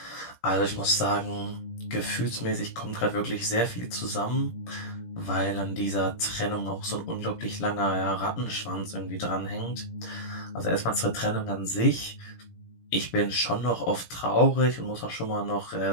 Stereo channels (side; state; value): right; late; 17 ms